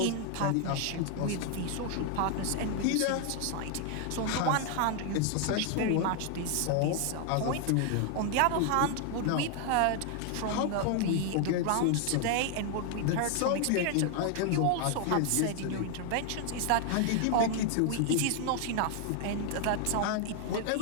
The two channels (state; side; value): different; both; correlation 0.00